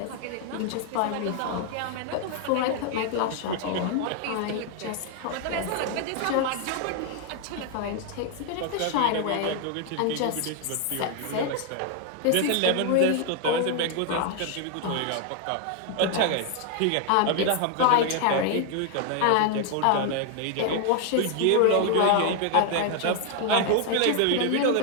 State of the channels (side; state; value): both; different; correlation 0.00